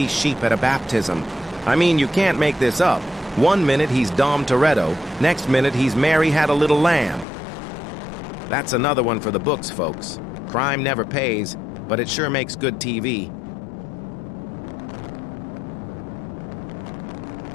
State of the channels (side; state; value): right; drops out; at 7.2 s